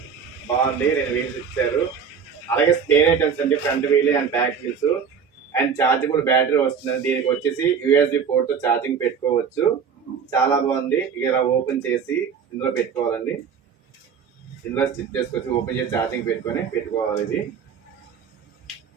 బాగుంది. 2 వీల్స్ ఇచ్చారు. అలాగే స్పేర్ ఐటమ్స్ అండి. Front wheel and back wheels and chargeable battery వస్తుంది. దీనికి వచ్చేసి USB పోర్ట్ తో ఛార్జింగ్ పెట్టుకోవచ్చు. చాలా బాగుంది. ఇలా ఓపెన్ చేసి ఇందులో పెట్టుకోవాలండి. ఇందులో స్టిచ్ చేసుకోవచ్చు. ఓపెన్ చేసి ఛార్జింగ్ పెట్టుకోవాలి. ఇది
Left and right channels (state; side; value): quieter; left; 6.7 dB